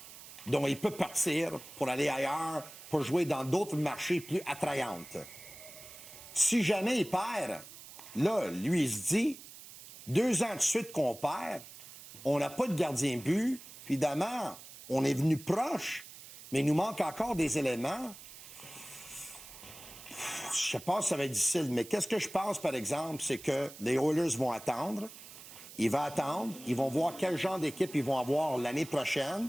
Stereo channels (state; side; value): noise; right; hiss, 16 dB below the sound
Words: Donc, il peut partir pour aller ailleurs, pour jouer dans d'autres marchés plus attrayantes. Si jamais il perd, là, lui, il se dit, 2 ans de suite qu'on perd, on n'a pas de gardien de but, puis évidemment, on est venu proche, mais il nous manque encore des éléments. Je sais pas si ça va être difficile, mais qu'est-ce que je pense, par exemple, c'est que les Oilers vont attendre. Ils vont attendre. Ils vont voir quel genre d'équipe ils vont avoir l'année prochaine.